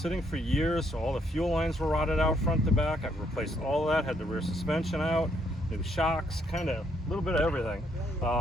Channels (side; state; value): both; normal; correlation 0.72